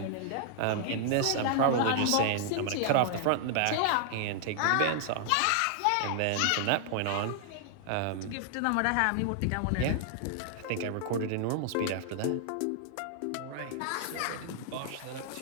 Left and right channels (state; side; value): different; both; correlation -0.01